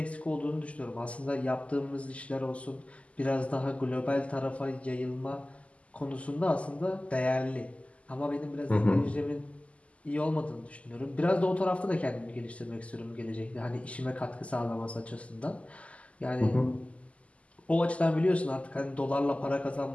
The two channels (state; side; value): late; right; 0.064 ms